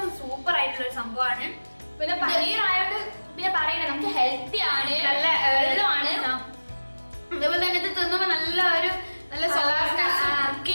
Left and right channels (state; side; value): inverted; both; correlation -1.00